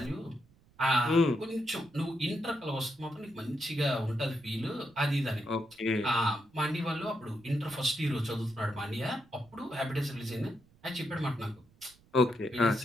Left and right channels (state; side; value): noise; right; rumble, 29 dB below the sound